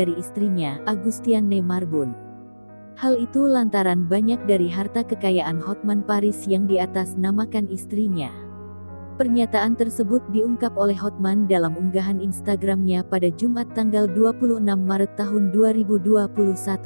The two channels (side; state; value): both; inverted; correlation -1.00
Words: istrinya, Agustiane Marbun. Hal itu lantaran banyak dari harta kekayaan Hotman Paris yang diatasnamakan istrinya. Pernyataan tersebut diungkap oleh Hotman dalam unggahan Instagramnya pada Jumat tanggal 26 Maret tahun 2021.